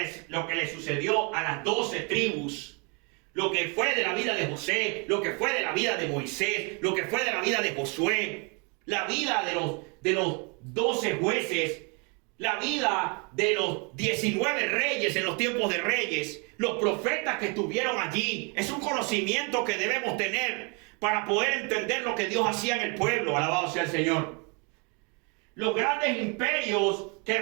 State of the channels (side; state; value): left; quieter; 33.4 dB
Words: le sucedió a las 12 tribus, lo que fue de la vida de José, lo que fue de la vida de Moisés, lo que fue de la vida de Josué, la vida de los 12 jueces, la vida de los 19 reyes en los tiempos de reyes, los profetas que estuvieron allí. Es un conocimiento que debemos tener para poder entender lo que Dios hacía en el pueblo. Alabado sea el Señor. Los grandes imperios que